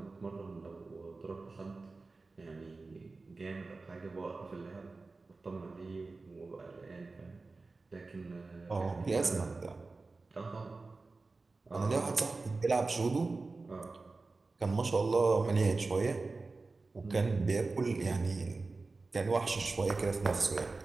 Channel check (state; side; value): quieter; left; 3.7 dB